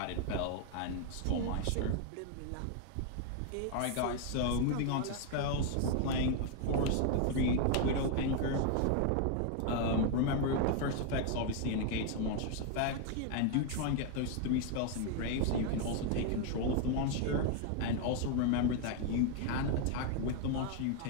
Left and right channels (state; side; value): different; both; correlation 0.00